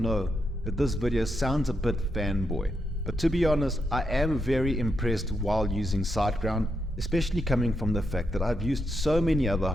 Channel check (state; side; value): normal; both; correlation 0.82